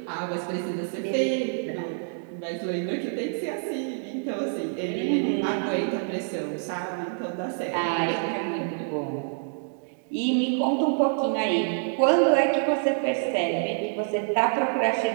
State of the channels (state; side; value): silent; left; digital silence